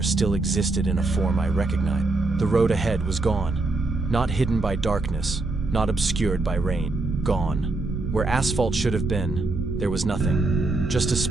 still existed in a form I recognized. The road ahead was gone. Not hidden by darkness, not obscured by rain. Gone. Where asphalt should have been, there was nothing. Just a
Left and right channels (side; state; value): left; quieter; 3.2 dB